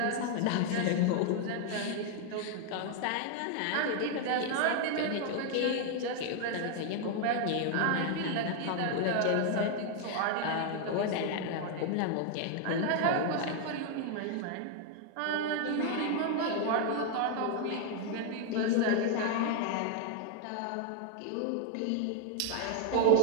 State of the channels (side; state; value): both; different; correlation 0.00